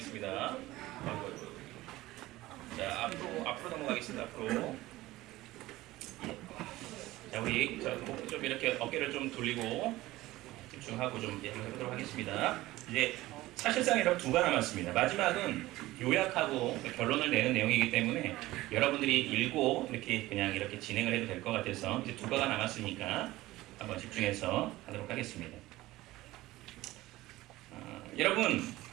자, 앞으로 넘어가겠습니다. 앞으로. 자, 우리 목 좀 이렇게 어깨를 좀 돌리고 집중하고 좀 해보도록 하겠습니다. 이제 사실상 여러분 2가 남았습니다. 마지막은 요약하고 결론을 내는 내용이기 때문에 여러분들이 읽고 이렇게 진행을 해도 될 것 같아서 이제 2가가 남았으니까 한번 집중해서 하도록 하겠습니다. 여러분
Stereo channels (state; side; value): quieter; left; 17.7 dB